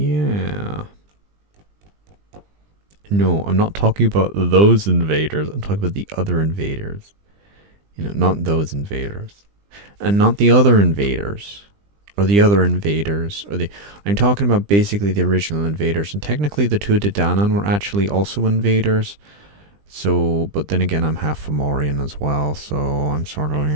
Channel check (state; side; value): late; left; 20 ms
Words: No, I'm not talking about those invaders. I'm talking about the other invaders. Not those invaders. And not the other invaders. Or the other invaders. I'm talking about basically the original invaders. And technically the Tuatha Dé Danann were actually also invaders. So, but then again, I'm half Fomorian as well. So I'm sort of,